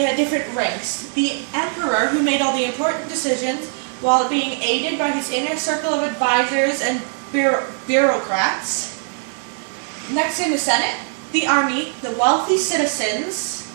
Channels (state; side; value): silent; left; 59 dB below the other